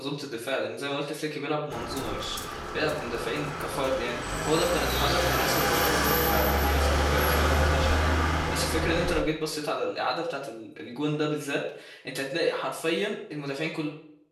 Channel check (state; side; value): identical; both; correlation 1.00